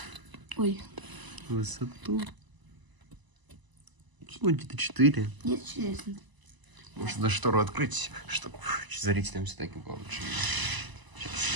Ой. Высоту. Ну, где-то 4. Где-то 4. Может, даже штору открыть, чтобы зрителям все-таки было лучше видно.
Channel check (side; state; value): left; late; 1.0 ms